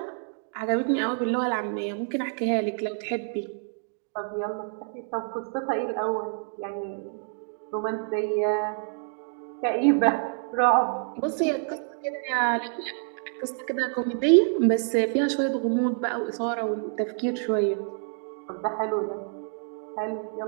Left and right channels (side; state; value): left; silent; 60 dB below the other